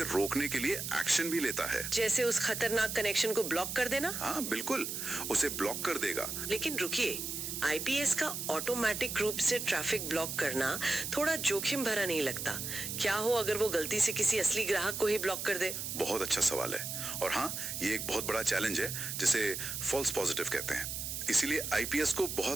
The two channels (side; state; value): right; noise; hiss, 4 dB below the sound